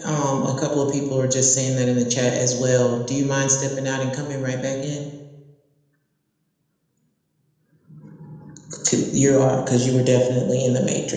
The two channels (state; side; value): identical; both; correlation 1.00